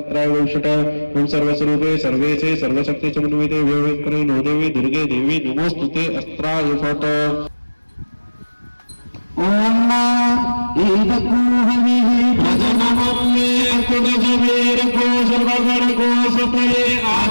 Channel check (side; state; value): both; inverted; correlation -1.00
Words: वौषट ओम सर्वस्वरूपे सर्वेशे सर्वशक्ति समन्विते व्यवस्थिते नो देवी दुर्गे देवी नमोस्तुते अस्त्राय फट ओम ईदकूहविः भजनमम्मे कुडजवीरको सर्वगणको सतये